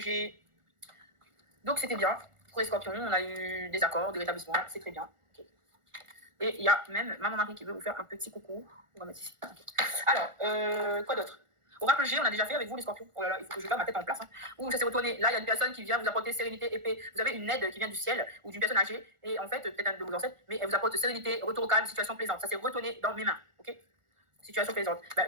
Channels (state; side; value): late; left; 1.4 ms